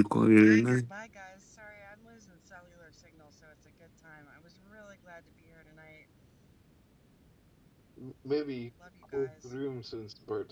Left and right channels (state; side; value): identical; both; correlation 1.00